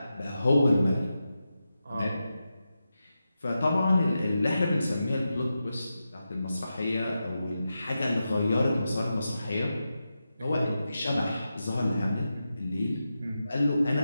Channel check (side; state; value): both; inverted; correlation -0.90